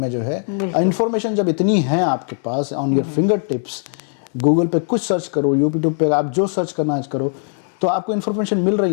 جو ہے انفارمیشن جب اتنی ہے آپ کے پاس on your fingertips, Google پہ کچھ سرچ کرو، یوٹیوب پہ آپ جو سرچ کرنا کرو تو آپ کو انفارمیشن مل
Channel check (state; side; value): silent; right; 64 dB below the other